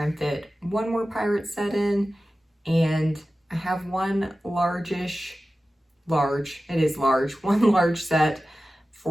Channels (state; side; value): normal; both; correlation 0.95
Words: and fit one more pirate set in. And I have one one large set